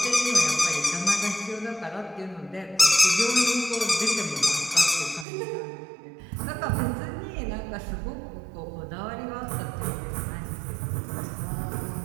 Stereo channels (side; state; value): left; drops out; at 5.2 s